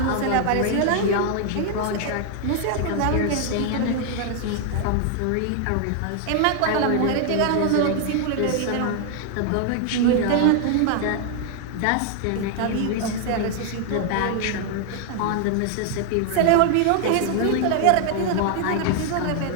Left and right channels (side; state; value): both; different; correlation 0.00